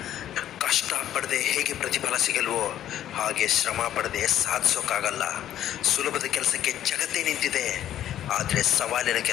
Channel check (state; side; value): quieter; right; 11.6 dB